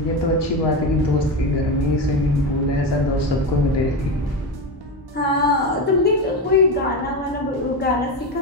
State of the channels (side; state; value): both; normal; correlation 0.17